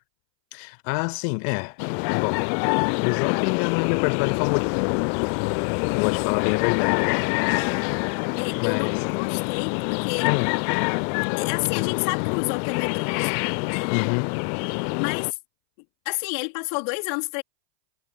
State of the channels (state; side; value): silent; right; 63 dB below the other